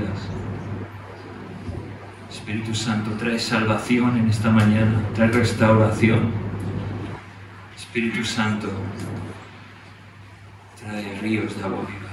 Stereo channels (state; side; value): identical; both; correlation 1.00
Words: Espíritu Santo, trae salvación en esta mañana, trae restauración. Espíritu Santo, trae ríos de agua viva